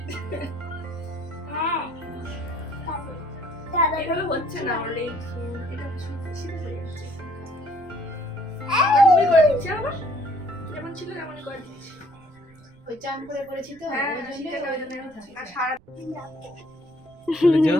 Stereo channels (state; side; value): noise; right; rumble, 26 dB below the sound